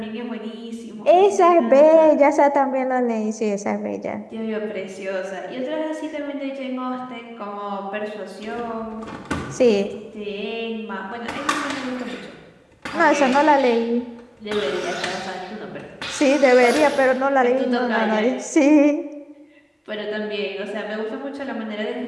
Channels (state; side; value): identical; both; correlation 1.00